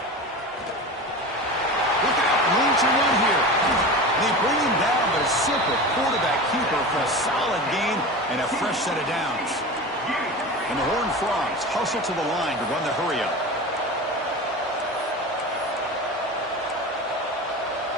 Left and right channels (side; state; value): both; normal; correlation 0.30